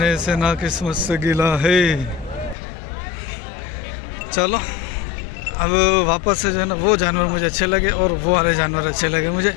से, ना किस्मत से गिला है। चलो अब वापस से जो है ना वो जानवर मुझे अच्छे लगे और वो वाले जानवर अच्छे लगे मुझे।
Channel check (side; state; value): right; drops out; at 2.6 s